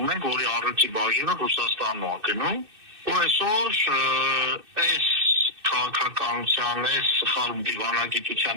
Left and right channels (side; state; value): left; late; 2.6 ms